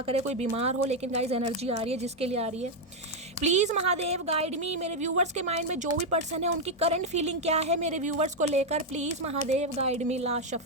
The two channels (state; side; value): normal; both; correlation 0.03